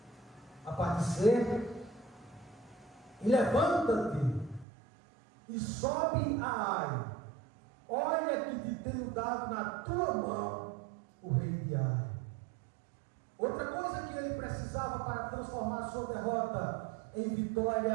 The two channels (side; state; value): left; drops out; at 4.7 s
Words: A parte C: e levanta-te e sobe a Ai. Olha que te tenho dado na tua mão o rei de Ai. Outra coisa que ele precisava para transformar a sua derrota em